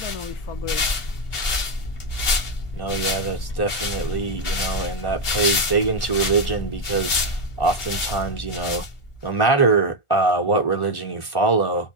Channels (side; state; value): right; late; 1.4 ms